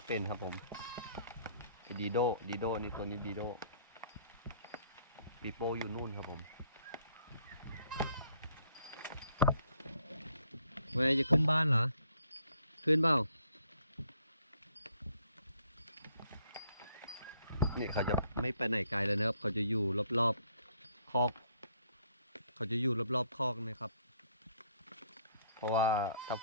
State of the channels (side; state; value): both; inverted; correlation -0.66